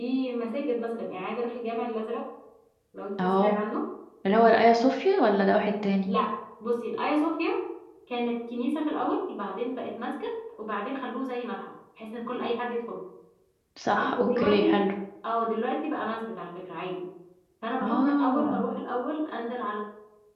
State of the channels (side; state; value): both; identical; correlation 1.00